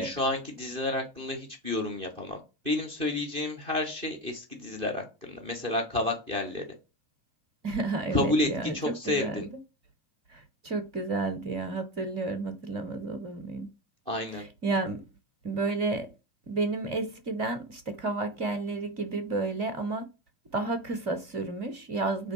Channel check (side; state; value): left; late; 2.6 ms